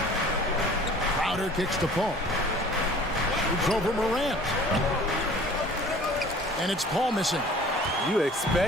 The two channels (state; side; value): normal; both; correlation 0.48